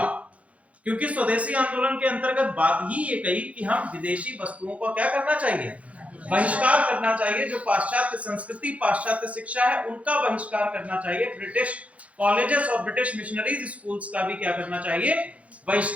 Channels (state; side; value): late; left; 0.065 ms